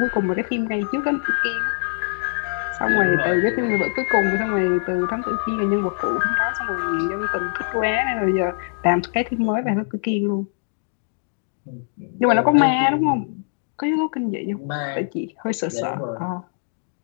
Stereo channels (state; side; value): silent; right; 64 dB below the other